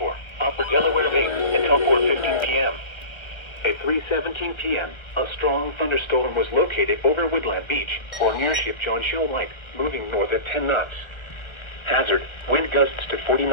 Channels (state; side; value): late; right; 1.4 ms